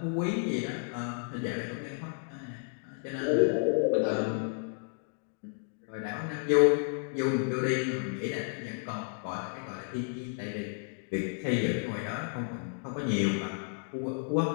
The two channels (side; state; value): right; silent; 56 dB below the other